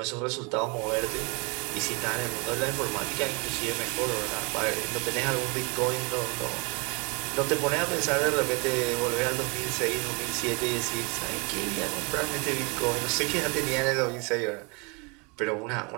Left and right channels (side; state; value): left; quieter; 30.6 dB